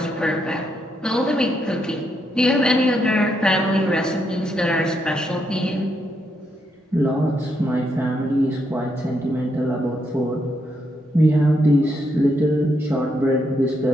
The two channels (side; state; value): both; normal; correlation 0.78